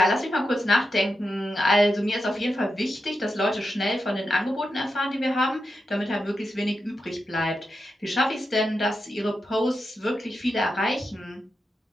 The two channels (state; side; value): normal; both; correlation 0.88